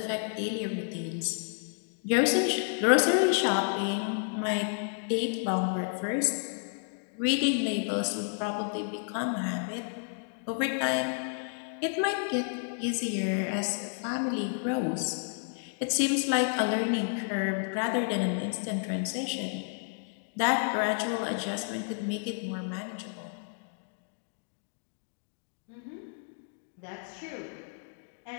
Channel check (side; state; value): right; silent; 57 dB below the other